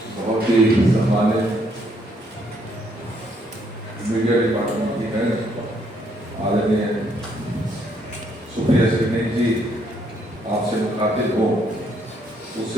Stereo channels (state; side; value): normal; both; correlation 0.70